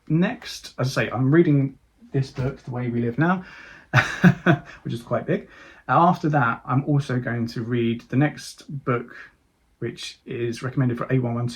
Next, as I say, I'm reading this book, The Way We Live Now, which is quite big. After that, I'm also going to read the next book, which is recommended for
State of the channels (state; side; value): identical; both; correlation 1.00